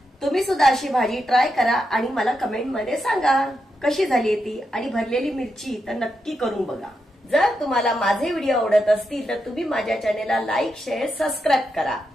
तुम्ही सुद्धा अशी भाजी ट्राय करा आणि मला कमेंटमध्ये सांगा कशी झाली ती. आणि भरलेली मिरची तर नक्की करून बघा. जर तुम्हाला माझे व्हिडिओ आवडत असतील तर तुम्ही माझ्या चॅनेलला लाईक, शेअर, सबस्क्राईब करा.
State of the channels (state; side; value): normal; both; correlation 0.85